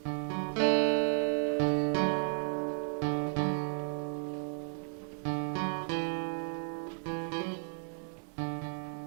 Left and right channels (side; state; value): left; silent; digital silence